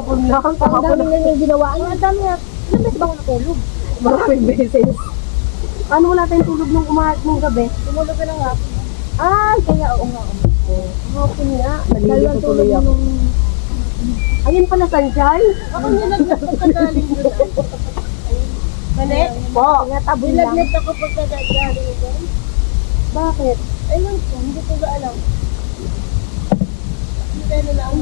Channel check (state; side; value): silent; right; digital silence